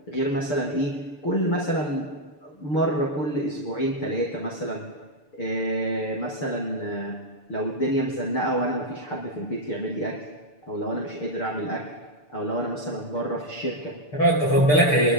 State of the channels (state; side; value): late; right; 6.8 ms